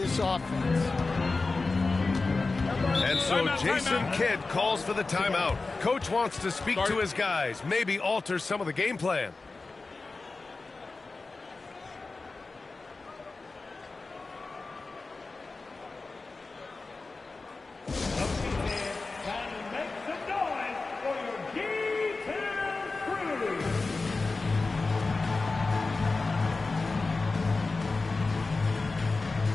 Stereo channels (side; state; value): right; quieter; 3.7 dB